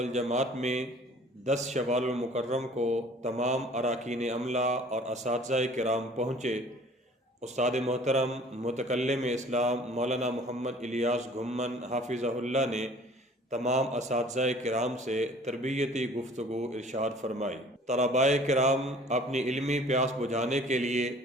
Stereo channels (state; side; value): normal; both; correlation 0.50